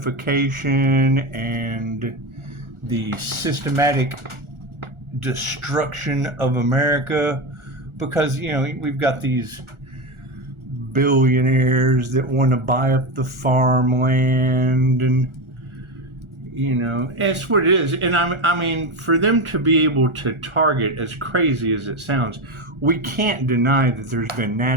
and the systematic destruction of America because, we've got these billionaires that want to buy up the farmland and that's what it is. And I mean, for them to be able to target, as crazy as it sounds, we can't deny that there's been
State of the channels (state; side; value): late; left; 1.4 ms